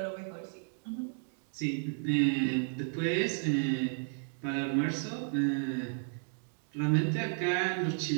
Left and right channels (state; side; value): silent; left; digital silence